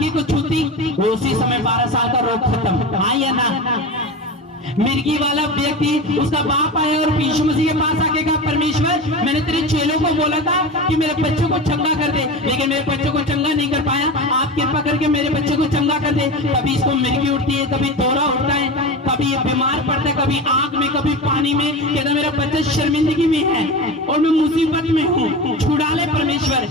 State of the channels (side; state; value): both; normal; correlation 0.26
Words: को छूती, उसी समय 12 साल का रोग खत्म। हाँ या ना? मिर्गी वाला व्यक्ति, उसका बाप आया और यीशु मसीह के पास आके कहा परमेश्वर मैंने तेरे चेलों को बोला था कि मेरे बच्चों को चंगा कर दे, लेकिन मेरे बच्चों को चंगा नहीं कर पाया, आप कृपा करके मेरे बच्चे को चंगा कर दे। कभी इसको मिर्गी उठती है, कभी दौरा उठता है, कभी ये बीमार पड़ता है, कभी आग में, कभी पानी में, कहता मेरा बच्चा शर्मिंदगी में है और मैं मुसीबत में हूँ, छुड़ा ले परमेश्वर।